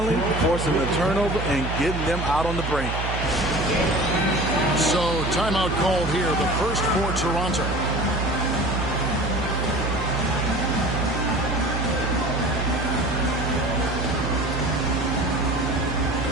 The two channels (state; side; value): noise; right; hum, 3 dB below the sound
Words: forcing the turnover and getting them out on the break. So timeout called here, the first for Toronto.